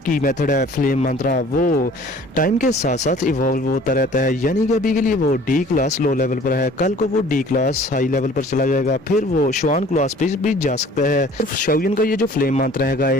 मेथड है फ्लेम मंत्रा वो टाइम के साथ साथ इवॉल्व होता रहता है। यानी कि अभी के लिए वो डी क्लास लो लेवल पर है, कल को वो डी क्लास हाई लेवल पर चला जाएगा, फिर वो शुआन क्लास पे भी जा सकता है। शाओयन का ये जो फ्लेम मंत्रा है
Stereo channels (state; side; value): normal; both; correlation 0.51